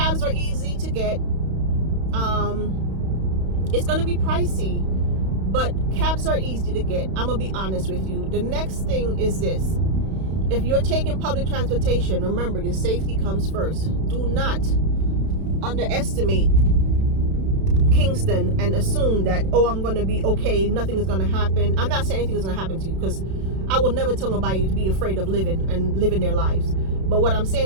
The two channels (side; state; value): left; late; 31 ms